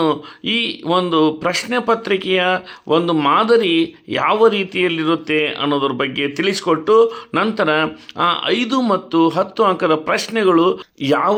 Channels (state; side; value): identical; both; correlation 1.00